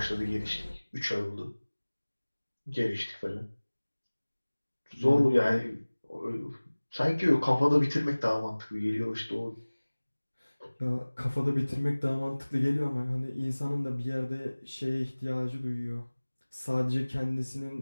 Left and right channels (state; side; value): inverted; both; correlation -1.00